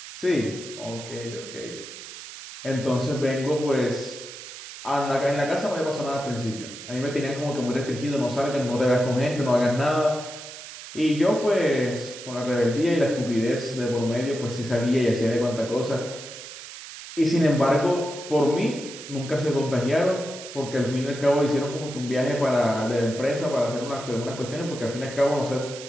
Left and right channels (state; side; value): noise; right; hiss, 13 dB below the sound